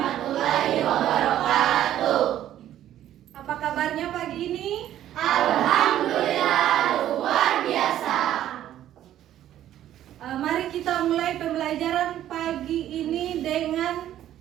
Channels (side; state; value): left; quieter; 12.0 dB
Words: wabarakatuh. Apa kabarnya pagi ini? Alhamdulillah luar biasa. Mari kita mulai pembelajaran pagi ini dengan